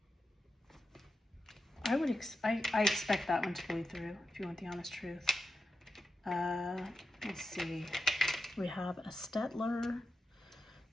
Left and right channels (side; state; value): both; normal; correlation 0.89